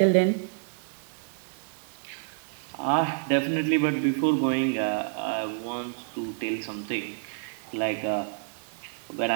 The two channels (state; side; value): silent; left; digital silence